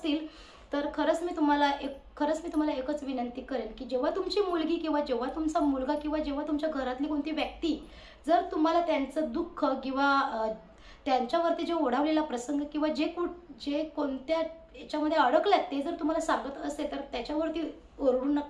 तर खरंच मी तुम्हाला एकच विनंती करेन की जेव्हा तुमची मुलगी किंवा जेव्हा तुमचा मुलगा किंवा जेव्हा तुमच्या घरातली कोणती व्यक्ती जर तुम्हाला त्यांचं दुःख किंवा त्यांच्यावरती जे ओढावलेला प्रसंग किंवा जे कोणत्या याच्यामध्ये अडकल्यात ते जर तुम्हाला सांगत असेल तर त्याच्यावरती ओरडू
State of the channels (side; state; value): both; identical; correlation 1.00